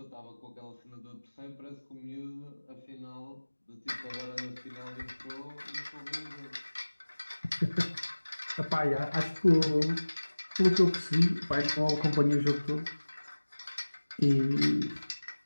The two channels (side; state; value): both; inverted; correlation -1.00